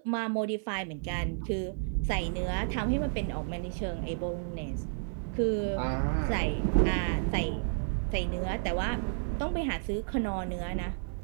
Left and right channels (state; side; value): silent; left; digital silence